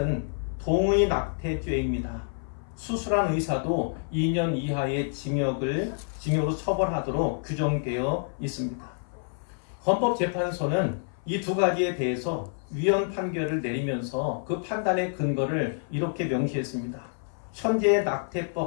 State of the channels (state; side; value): silent; right; 58 dB below the other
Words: 동의 낙태죄입니다. 수술한 의사도 2년 이하의 징역으로 처벌하도록 규정되어 있습니다. 헌법재판소는 이 2가지에 대해서 위헌 판결을 내리면서 그 판단의 근거를 이렇게 명시했습니다. 현재의